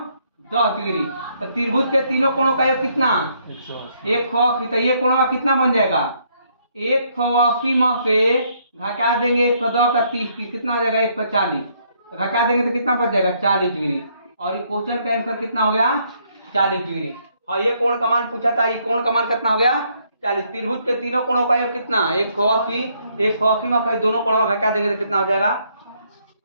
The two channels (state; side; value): inverted; both; correlation -0.70